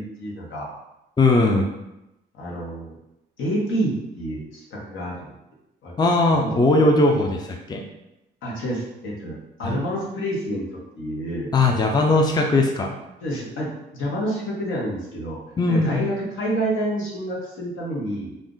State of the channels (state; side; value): normal; both; correlation 0.55